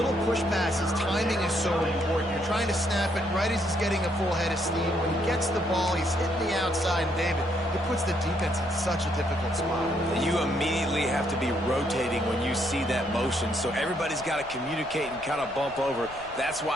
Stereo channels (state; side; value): noise; left; rumble, 23 dB below the sound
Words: push passes, timing is so important. You're trying to snap it right as he's getting a full head of steam. When he gets the ball, he's hitting the outside, and David, it puts the defense in such a difficult spot. You immediately have to be rotating when you see that motion, so everybody's got to communicate and kind of bump over. That's